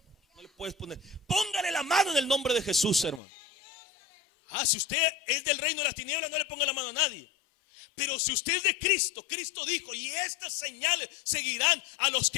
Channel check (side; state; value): right; drops out; at 3.2 s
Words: No le puedes poner. Póngale la mano en el nombre de Jesús, hermano. Si usted es del reino de las tinieblas, no le ponga la mano a nadie. Pero si usted es de Cristo, Cristo dijo, y estas señales seguirán a los